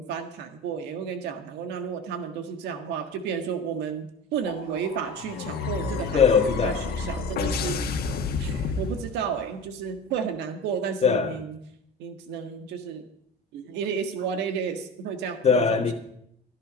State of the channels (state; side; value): normal; both; correlation 0.31